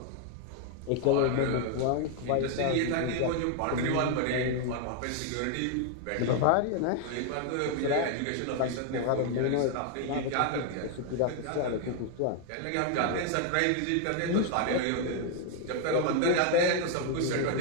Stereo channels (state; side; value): different; both; correlation 0.00